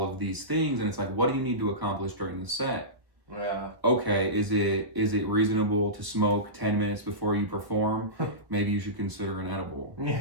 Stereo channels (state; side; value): late; left; 1.0 ms